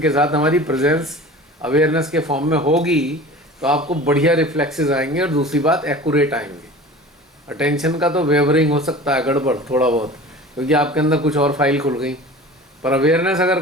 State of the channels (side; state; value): both; normal; correlation 0.39